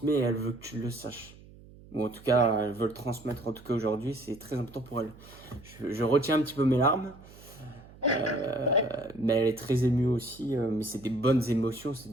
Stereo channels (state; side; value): noise; right; hum, 21 dB below the sound